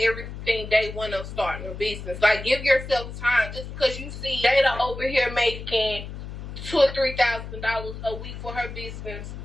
day one of starting a business. Like, give yourself time. Just because you see Jada over here making $2,000 or $3,000 a week for her business,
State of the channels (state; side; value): noise; left; hum, 10 dB below the sound